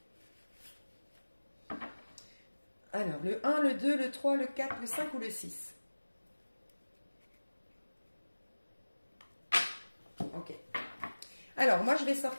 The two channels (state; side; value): inverted; both; correlation -1.00